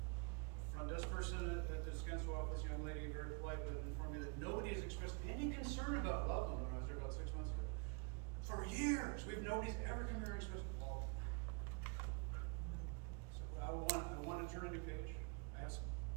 Front desk person at the Descanso office, young lady, very polite, but informed me that nobody has expressed any concern about Loveland when I was there about 6 months ago. For years, nobody's ever come here and expressed, well, so I want to turn a new page. I have some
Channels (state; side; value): quieter; left; 33.5 dB